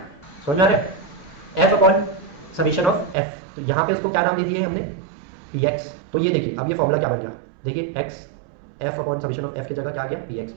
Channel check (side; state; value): left; drops out; at 3.2 s